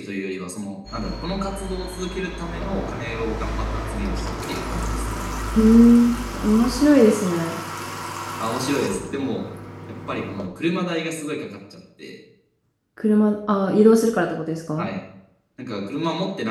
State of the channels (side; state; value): both; identical; correlation 1.00